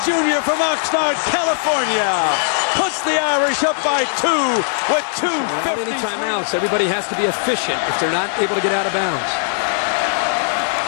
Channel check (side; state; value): right; silent; digital silence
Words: junior from Oxnard, California, puts the Irish up by 2 with 2:50. Without any timeouts, everybody has to be efficient if they're not able to get out of bounds.